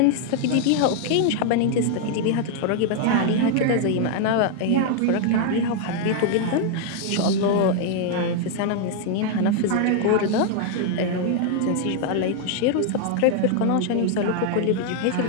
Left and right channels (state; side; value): different; both; correlation 0.00